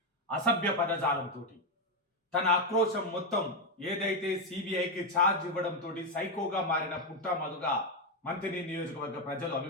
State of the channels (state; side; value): normal; both; correlation 0.06